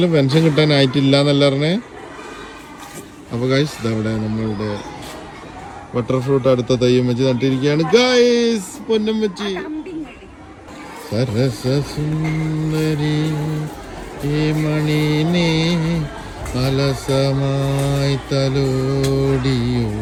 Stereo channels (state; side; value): identical; both; correlation 1.00